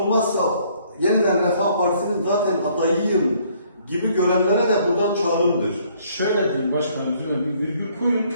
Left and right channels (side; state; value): both; inverted; correlation -0.63